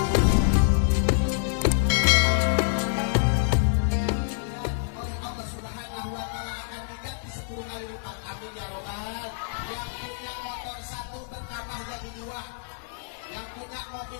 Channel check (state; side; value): silent; right; digital silence